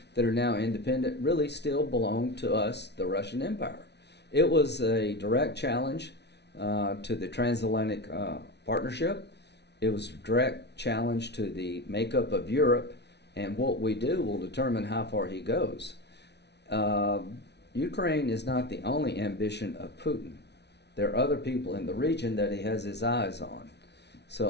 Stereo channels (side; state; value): right; late; 0.50 ms